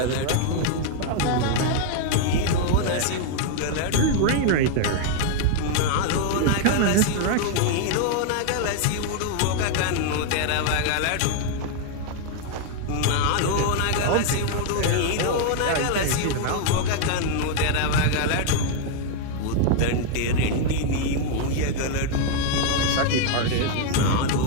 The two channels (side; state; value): both; different; correlation 0.00